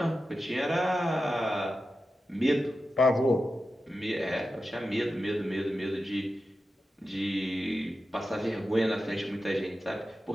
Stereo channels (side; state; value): both; normal; correlation 0.91